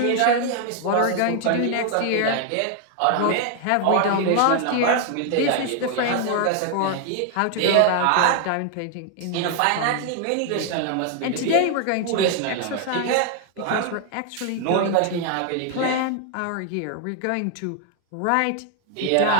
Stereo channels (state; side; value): different; both; correlation 0.00